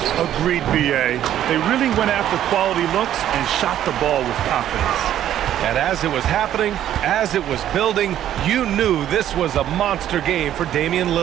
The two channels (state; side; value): quieter; left; 11.4 dB